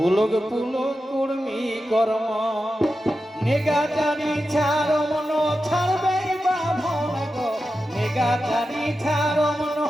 পুলক কর্মী কর্ম নেগাটারি ছাড়ব না ছাড়বে বামন গো নেগাটারি ছাড়ব না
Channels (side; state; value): both; normal; correlation 0.91